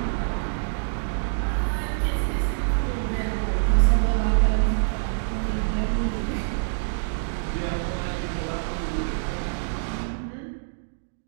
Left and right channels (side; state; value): left; silent; digital silence